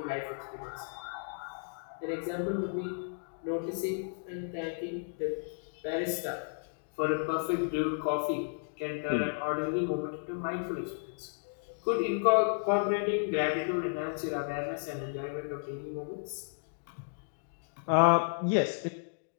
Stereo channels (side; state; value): right; silent; digital silence